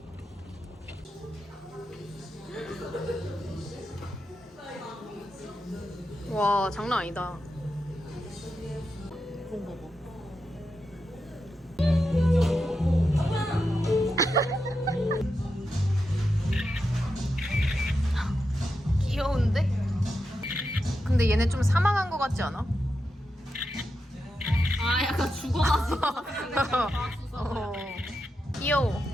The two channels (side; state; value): both; normal; correlation 0.87